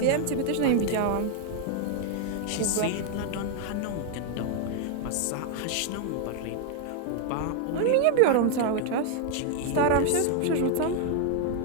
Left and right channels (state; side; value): different; both; correlation 0.00